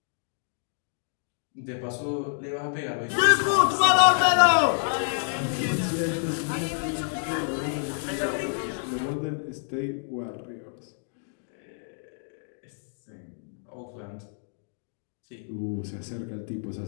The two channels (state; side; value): silent; right; digital silence